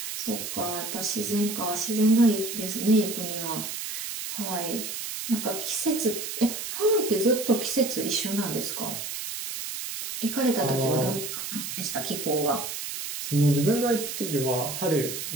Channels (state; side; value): noise; right; hiss, 6 dB below the sound